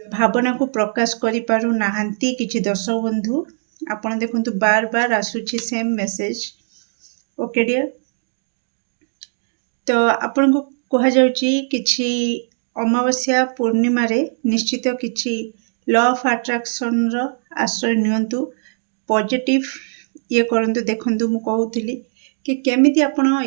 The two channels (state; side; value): silent; left; digital silence